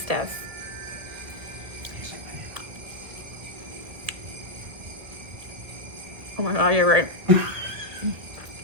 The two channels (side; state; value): left; late; 2.1 ms